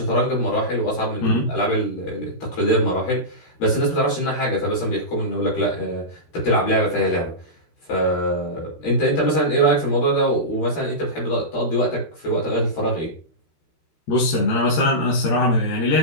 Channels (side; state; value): right; late; 13 ms